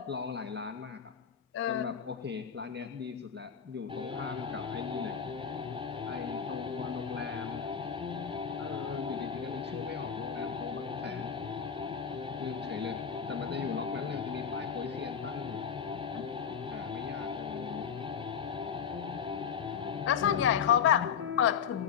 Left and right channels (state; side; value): quieter; right; 7.3 dB